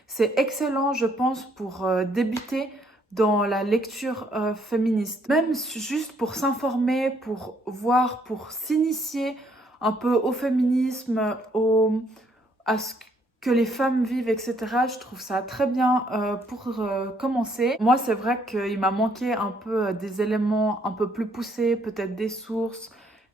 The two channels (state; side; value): normal; both; correlation 0.68